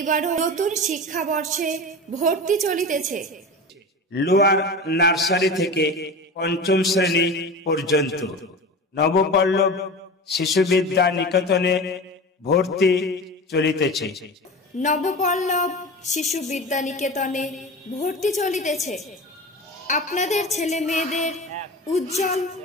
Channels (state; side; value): normal; both; correlation 0.30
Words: নতুন শিক্ষাবর্ষে ভর্তি চলিতেছে। লোয়ার নার্সারি থেকে পঞ্চম শ্রেণী পর্যন্ত নবপল্লব শিশু বিদ্যা নিকেতনে ভর্তি চলিতেছে। নবপল্লব শিশু বিদ্যা নিকেতনে ভর্তি চলিতেছে। আপনাদের ছেলে মেয়েদের উজ্জ্বল